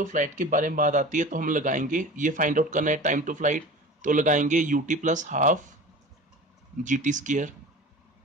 फ्लाइट के बारे में बात आती है तो हम लगाएंगे, ये फाइंड आउट करना है टाइम टू फ्लाइट, तो लगाएंगे UT plus half g t square.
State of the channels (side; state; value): both; normal; correlation 0.37